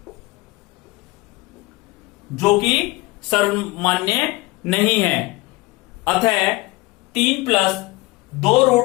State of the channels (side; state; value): right; quieter; 21.4 dB